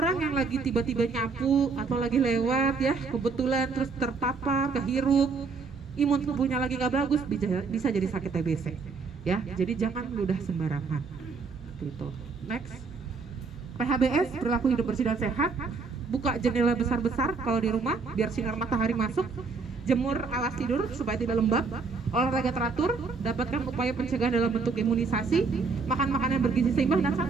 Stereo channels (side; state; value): left; quieter; 4.6 dB